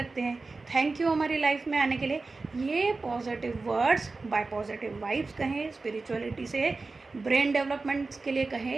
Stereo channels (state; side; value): quieter; left; 3.8 dB